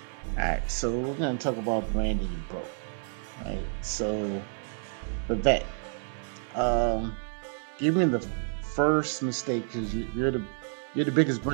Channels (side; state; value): left; silent; 57 dB below the other